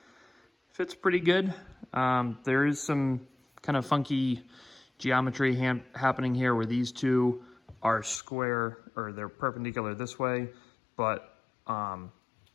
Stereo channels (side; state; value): right; drops out; at 8.2 s